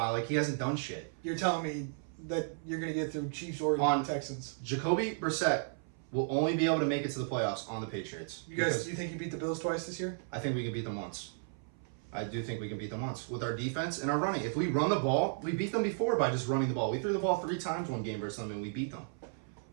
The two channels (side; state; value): left; silent; 55 dB below the other